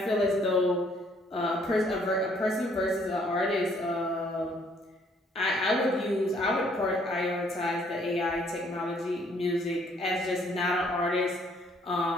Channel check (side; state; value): both; normal; correlation 0.64